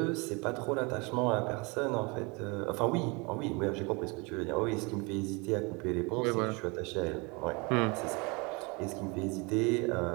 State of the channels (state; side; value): quieter; left; 28.5 dB